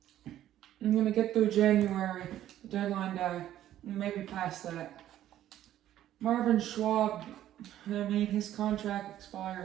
January, deadline day, and maybe past that. Marvin Schwab, his contract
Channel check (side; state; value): left; quieter; 12.4 dB